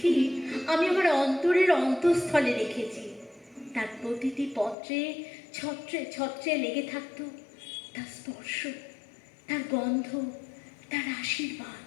আমি আমার অন্তরের অন্তঃস্থলে রেখেছি। তার প্রতিটি পত্রে ছত্রে ছত্রে লেগে থাকতো তার স্পর্শ, তার গন্ধ, তার আশীর্বাদ।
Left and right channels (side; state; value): right; drops out; at 4.8 s